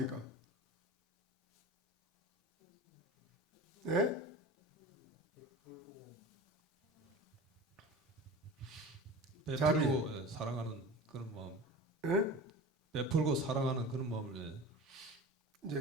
예? 베풀고 예, 사랑하는 그런 마음. 예? 베풀고 사랑하는 그런 마음을 예.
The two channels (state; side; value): normal; both; correlation 0.34